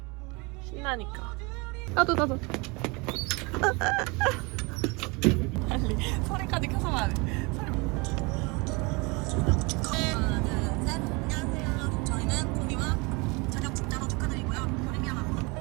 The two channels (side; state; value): left; quieter; 27.8 dB